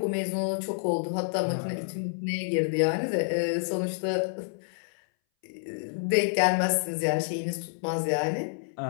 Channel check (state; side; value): silent; right; 59 dB below the other